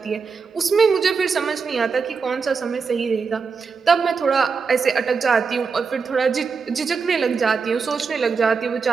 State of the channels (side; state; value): left; quieter; 5.3 dB